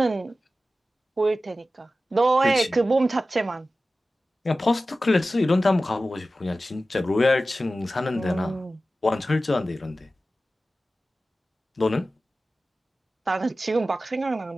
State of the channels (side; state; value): both; normal; correlation 0.95